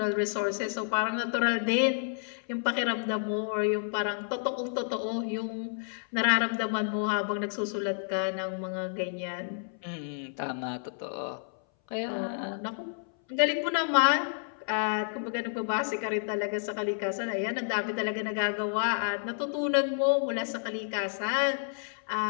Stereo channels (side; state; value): right; silent; 58 dB below the other